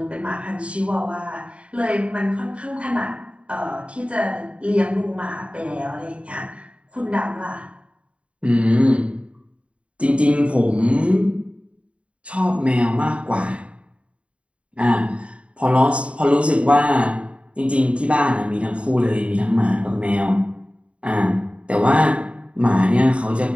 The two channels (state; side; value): late; left; 0.061 ms